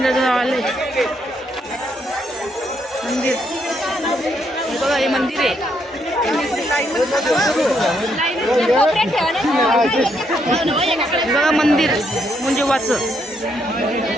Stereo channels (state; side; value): normal; both; correlation 0.75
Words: आलोय. मंदिर बघा, हे मंदिर आहे. बघा मंदिर मुंजोबाचं.